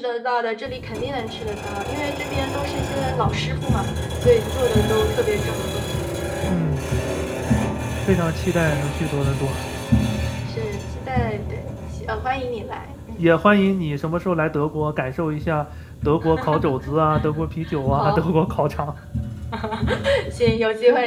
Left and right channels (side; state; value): both; identical; correlation 1.00